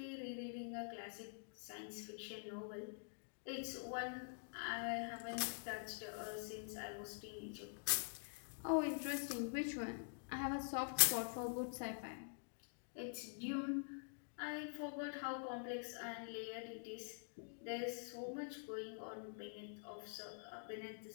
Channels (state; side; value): silent; right; digital silence